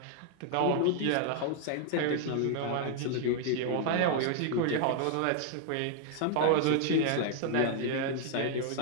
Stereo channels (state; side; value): different; both; correlation 0.00